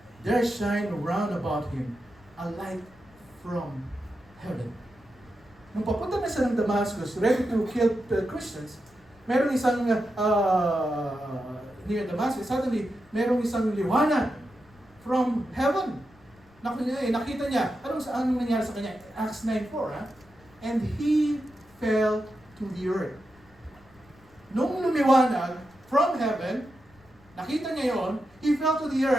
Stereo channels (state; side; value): noise; left; rumble, 28 dB below the sound